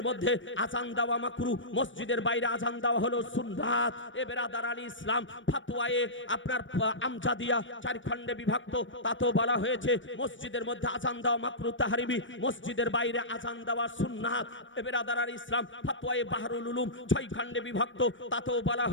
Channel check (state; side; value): late; right; 0.56 ms